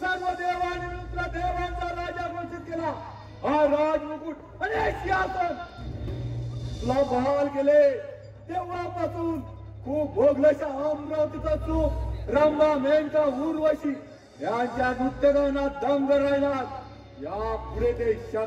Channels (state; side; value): identical; both; correlation 1.00